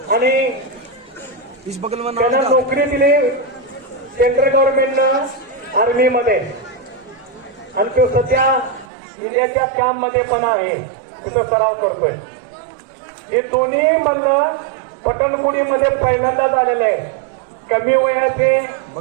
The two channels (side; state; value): left; drops out; at 8.8 s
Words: आणि त्यांना नोकरी दिली सेंट्रल गव्हर्नमेंटनं आर्मीमध्ये. आणि तो सध्या इंडियाच्या कॅम्पमध्ये पण आहे, तिथं सराव करतोय. हे दोन्ही म्हणणं पटणपुडीमध्ये पहिल्यांदा झालेलं आहे. कमी वयाचे